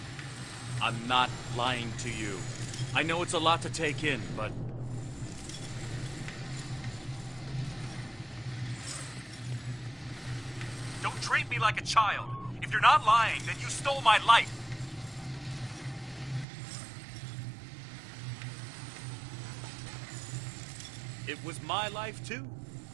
I'm not lying to you. I know it's a lot to take in, but... Don't treat me like a child. If you're not lying, then you stole my life. It was my life, too.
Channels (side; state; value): left; drops out; at 16.4 s